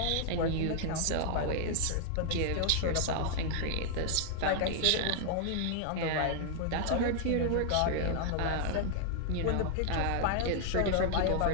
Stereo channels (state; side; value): different; both; correlation 0.00